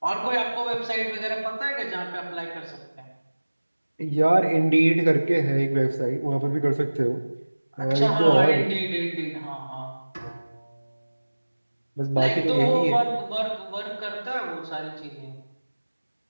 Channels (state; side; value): inverted; both; correlation -1.00